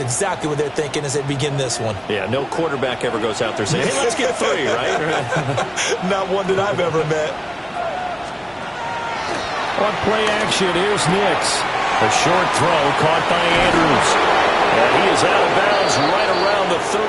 exactly what they're thinking as they begin this one. Yeah, no quarterback ever goes out there saying, hey, let's get 3, right? Not one that I've ever met. On play action, here's Nix. A short throw caught by Andrews. And he is out of bounds right around the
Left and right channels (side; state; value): both; identical; correlation 1.00